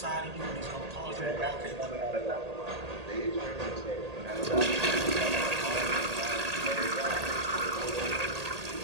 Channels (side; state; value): left; late; 1.8 ms